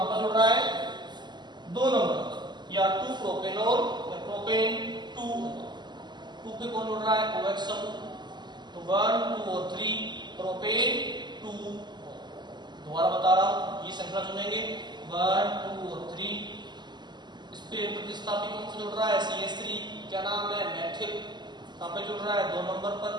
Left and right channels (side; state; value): left; late; 0.21 ms